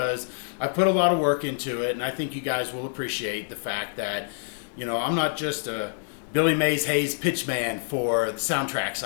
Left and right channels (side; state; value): right; silent; 61 dB below the other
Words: I put a lot of work into it, and I think you guys will appreciate the fact that, I'm not just a Billy Mays Hayes pitchman for the